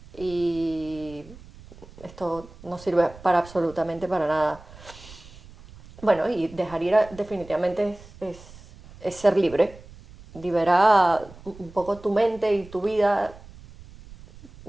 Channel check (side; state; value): right; noise; rumble, 20 dB below the sound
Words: y esto no sirve para absolutamente para nada. Bueno, y dejar ir definitivamente es ser libre. Libera un poco tu mente y tu vida